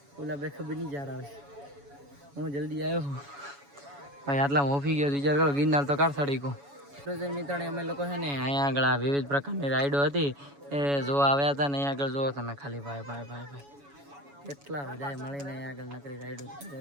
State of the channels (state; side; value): late; left; 7.1 ms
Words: ઓલા બે ખબર નહીં જાર આવે. હું જલ્દી આવ્યો ભાઈ, આટલા મોફી ગયો વિચાર કરો. ગિરનાર તો કાર સડી ગયો. મિત્રોને અમે લોકો છે ને અહીંયા આગળ આ વિવિધ પ્રકારની રાઈડો હતી એ જોવા આવ્યા હતા ને અહીંયા આગળ જુઓ તમે ખાલી ભાઈ કેટલા બધા મળીને અહીંયા આગળ નકરી રાઈડો